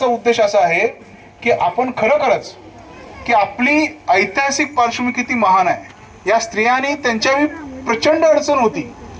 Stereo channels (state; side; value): identical; both; correlation 1.00